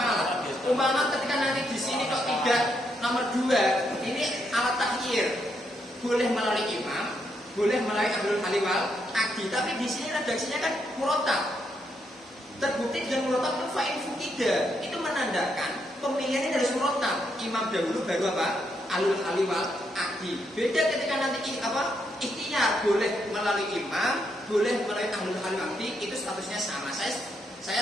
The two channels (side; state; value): both; normal; correlation 0.78